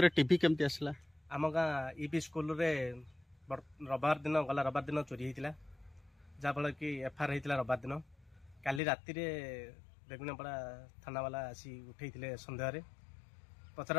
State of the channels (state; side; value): drops out; right; at 8.8 s